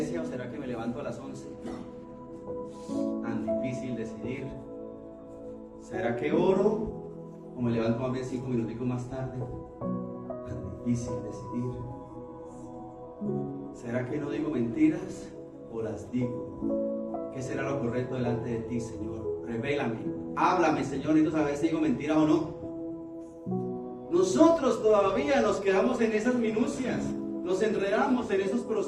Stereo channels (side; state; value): both; identical; correlation 1.00